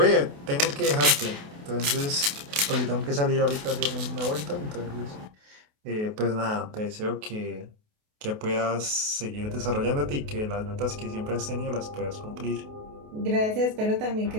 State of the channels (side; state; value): left; late; 28 ms